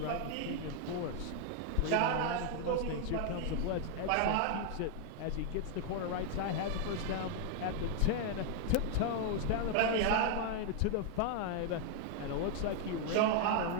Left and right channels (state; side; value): different; both; correlation 0.00